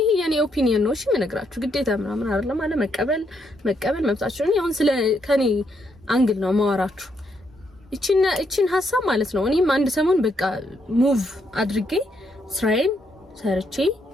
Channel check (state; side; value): normal; both; correlation 0.76